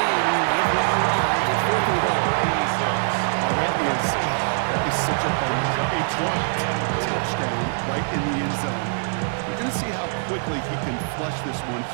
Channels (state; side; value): silent; left; digital silence